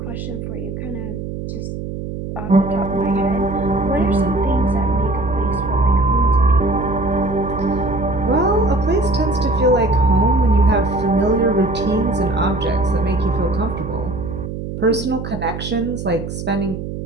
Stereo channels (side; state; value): right; noise; hum, 7 dB below the sound